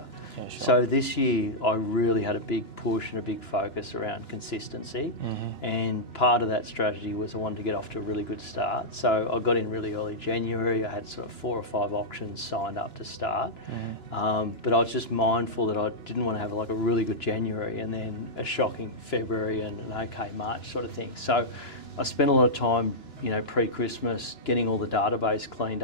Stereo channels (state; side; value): late; right; 2.9 ms